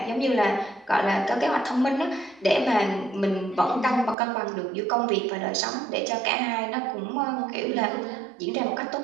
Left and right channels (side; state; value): left; drops out; at 4.2 s